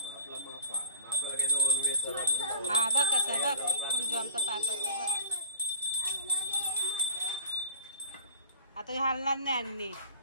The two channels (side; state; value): both; inverted; correlation -0.40